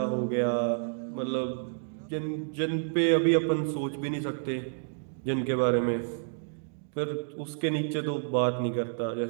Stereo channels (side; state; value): left; silent; digital silence